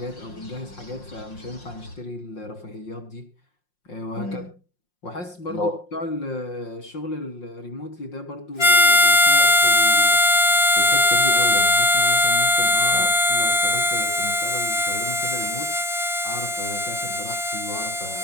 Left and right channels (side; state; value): right; late; 5.6 ms